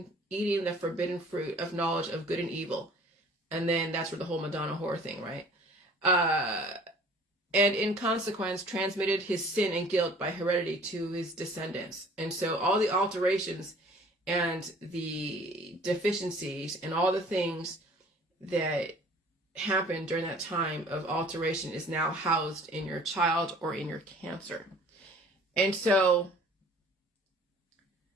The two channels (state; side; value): normal; both; correlation 0.50